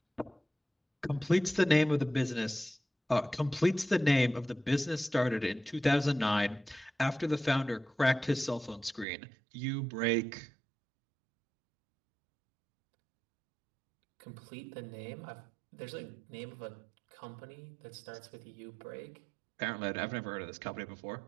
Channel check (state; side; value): drops out; left; at 9.1 s